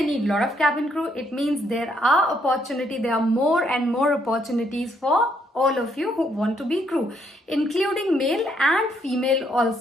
need lot of cabin crew, it means there are more and more opportunities for all of you who want to be crew, including male and female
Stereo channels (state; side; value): normal; both; correlation 0.72